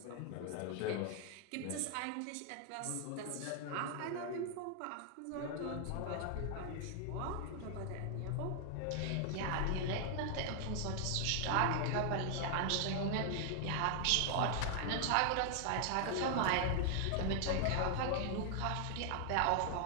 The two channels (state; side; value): different; both; correlation 0.00